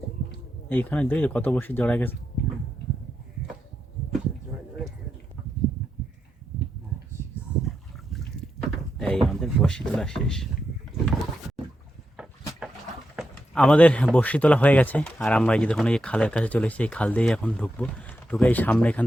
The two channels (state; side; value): normal; both; correlation 0.85